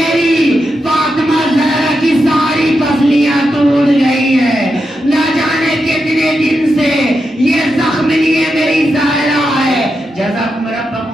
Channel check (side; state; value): both; normal; correlation 0.86